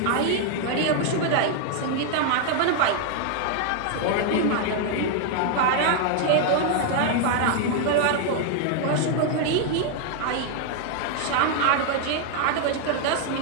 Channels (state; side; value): different; both; correlation 0.00